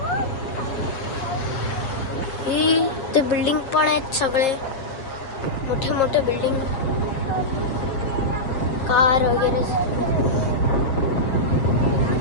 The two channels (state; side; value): late; right; 7.2 ms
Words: ही ते बिल्डिंग पण आहेत, सगळे मोठे मोठे बिल्डिंग, कार वगैरे.